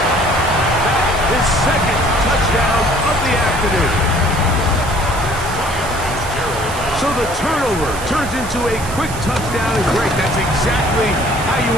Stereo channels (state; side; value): noise; right; hiss, 12 dB below the sound